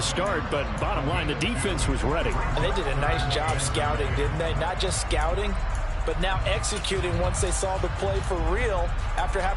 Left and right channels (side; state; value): both; identical; correlation 1.00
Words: but bottom line, the defense was ready. And they did a nice job scouting, didn't they? Not just scouting, but now executing once they saw the play for real after